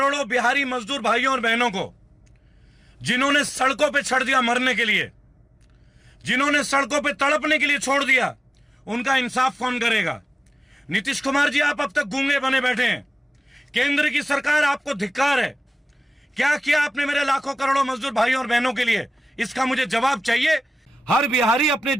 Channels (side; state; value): both; normal; correlation 0.96